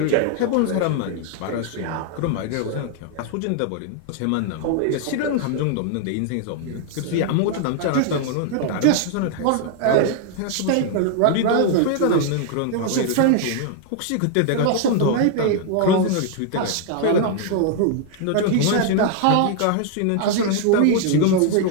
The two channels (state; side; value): different; both; correlation 0.00